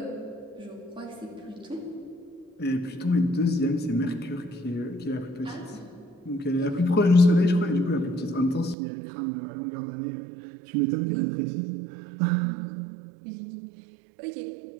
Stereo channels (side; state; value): left; drops out; at 8.8 s